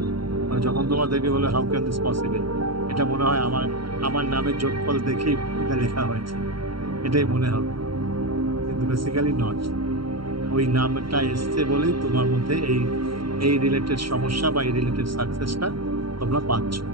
মানে যখন তোমার দেখে বলে হাউ ক্যান দিস পসিবল, এটা মনে হয় আমার নামের যোগফল দেখেই এটা লেখা হয়েছে, এটাই মনে হবে, কিন্তু বেসিক্যালি নট। ওই নামটা এসছে বলেই তোমার মধ্যে এই রিলেটেড সমস্যা বা এই রিলেটেড সাকসেসটা তোমরা পাচ্ছ।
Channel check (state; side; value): late; left; 0.74 ms